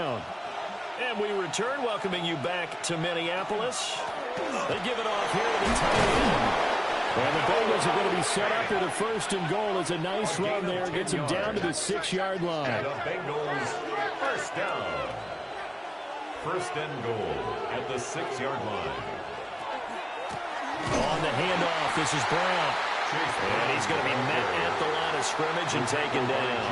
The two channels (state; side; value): identical; both; correlation 1.00